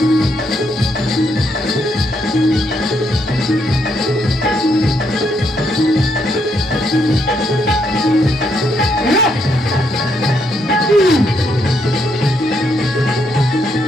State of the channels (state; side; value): normal; both; correlation 0.76